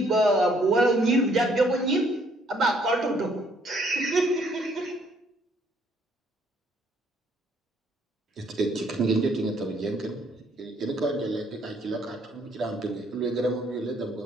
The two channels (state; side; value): normal; both; correlation 0.66